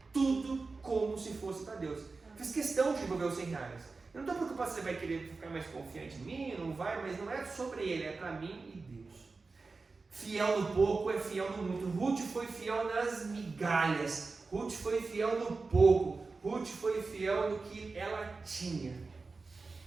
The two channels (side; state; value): left; quieter; 4.0 dB